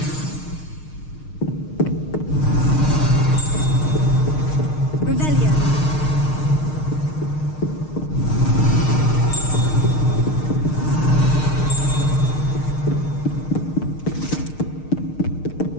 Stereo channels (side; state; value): right; late; 6.5 ms